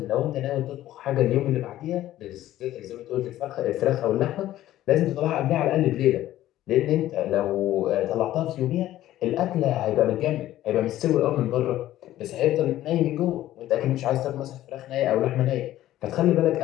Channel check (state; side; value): quieter; right; 14.0 dB